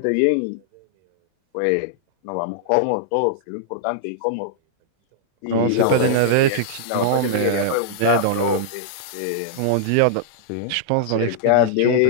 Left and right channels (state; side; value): different; both; correlation -0.01